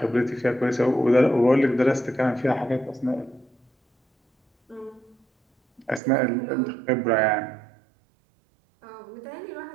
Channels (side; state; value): left; drops out; at 6.0 s